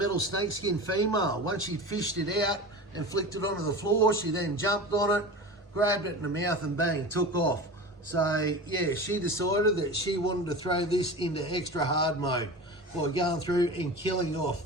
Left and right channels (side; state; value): both; normal; correlation 0.31